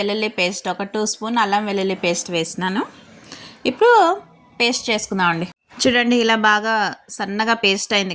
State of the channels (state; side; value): identical; both; correlation 1.00